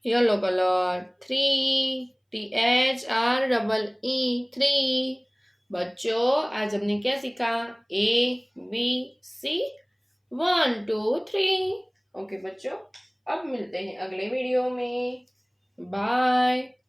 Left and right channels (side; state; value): both; identical; correlation 1.00